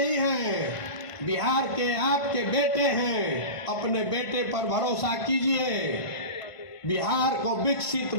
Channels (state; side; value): late; right; 1.5 ms